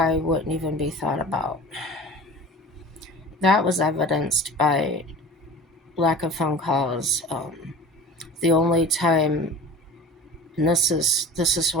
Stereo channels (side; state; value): both; normal; correlation 0.38